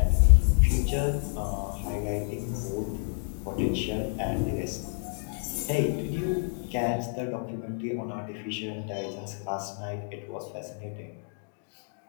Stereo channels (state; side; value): silent; right; digital silence